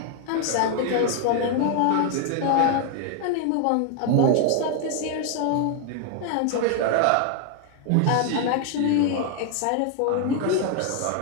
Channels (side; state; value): both; different; correlation 0.00